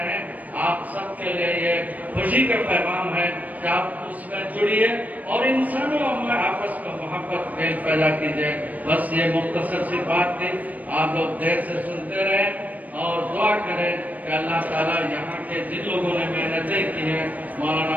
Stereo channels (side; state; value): left; late; 0.075 ms